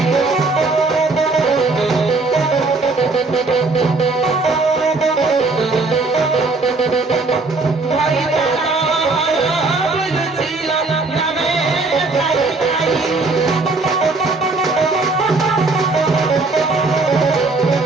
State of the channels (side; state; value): left; quieter; 3.6 dB